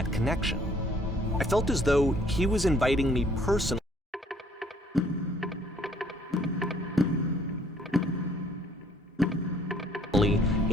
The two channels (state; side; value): normal; both; correlation 0.61